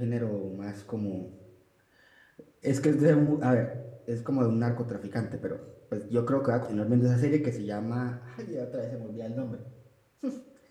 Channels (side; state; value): both; identical; correlation 1.00